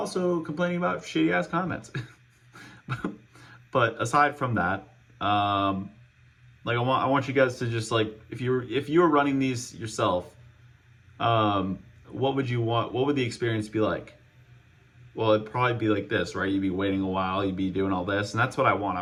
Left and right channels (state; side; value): identical; both; correlation 1.00